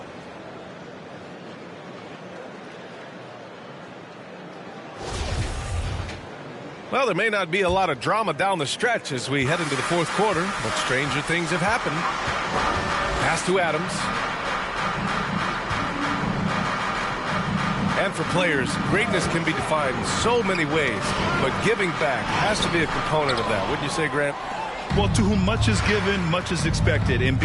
Well, there may not be a lot of drama down the stretch as we head into the fourth quarter, but stranger things have happened. Pass to Adams. And for players, greatness can be defined in so many ways, but giving back has to be a component of that. Wouldn't you say, Grant? Well, to whom much is given, much is expected. In BA,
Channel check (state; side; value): identical; both; correlation 1.00